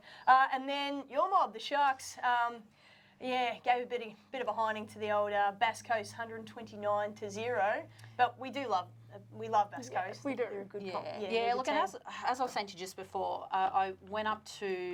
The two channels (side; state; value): both; identical; correlation 1.00